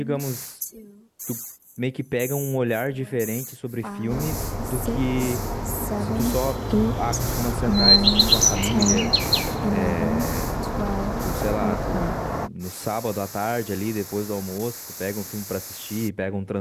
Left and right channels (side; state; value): both; identical; correlation 1.00